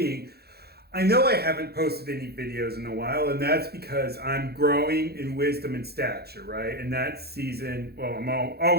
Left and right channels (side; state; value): left; late; 0.46 ms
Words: I know I haven't posted any videos in a while, and that's because I'm growing in wisdom and stature, right? And that season, well,